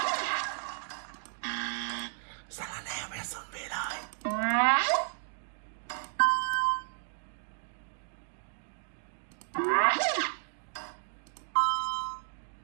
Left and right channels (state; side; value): silent; left; digital silence